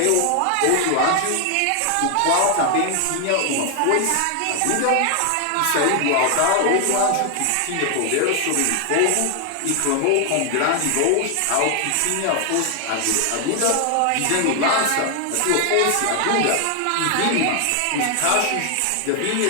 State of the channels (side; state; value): both; different; correlation 0.00